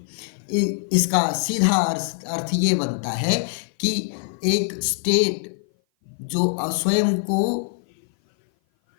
इसका सीधा अर्थ ये बनता है कि एक स्टेट जो स्वयं को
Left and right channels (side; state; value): right; silent; 57 dB below the other